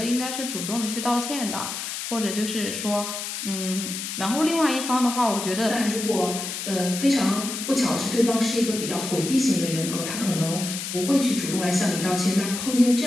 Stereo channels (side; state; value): left; noise; hiss, 6 dB below the sound